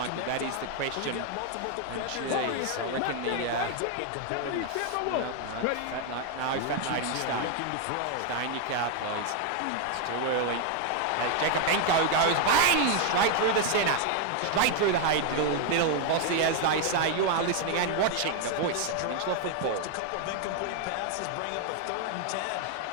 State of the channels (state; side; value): different; both; correlation 0.01